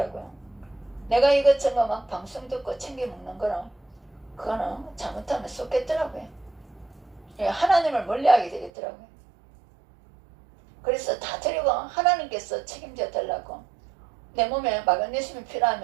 내가 이것저것 막 방송 듣고 챙겨 먹는 거는 그거는 잘못하면 쏟겠더라고요. 하나님을 멀리하게 되겠더라고요. 그래서 다 드리고 하나님께서 책임져 달라고 내 몸에 마그네슘이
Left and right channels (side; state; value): left; drops out; at 8.7 s